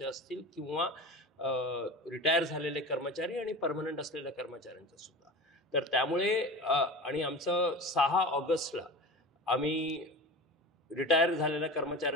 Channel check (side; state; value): both; normal; correlation 0.32